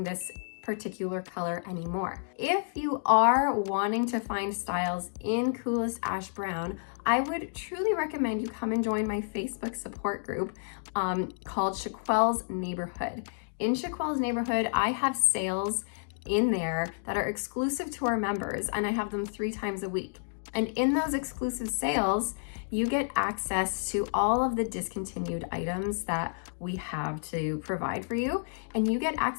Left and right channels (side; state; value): right; silent; digital silence